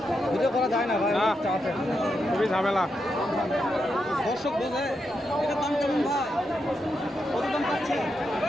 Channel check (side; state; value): both; normal; correlation 0.84